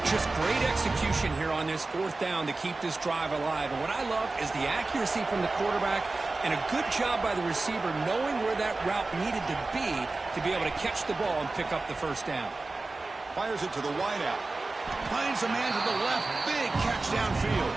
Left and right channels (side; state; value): left; quieter; 3.4 dB